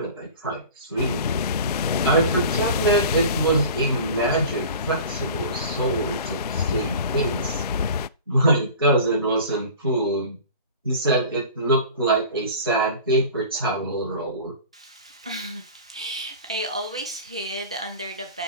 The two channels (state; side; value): inverted; both; correlation -0.39